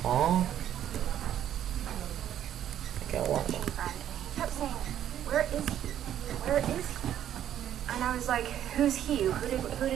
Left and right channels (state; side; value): quieter; left; 10.8 dB